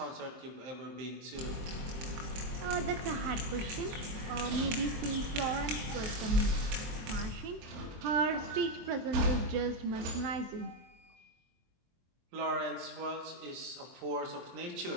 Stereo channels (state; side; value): late; left; 23 ms